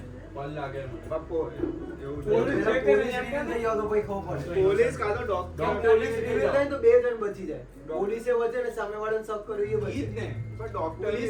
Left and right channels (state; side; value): identical; both; correlation 1.00